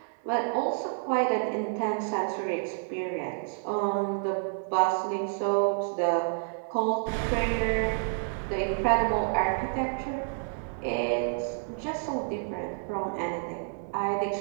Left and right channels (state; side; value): silent; left; digital silence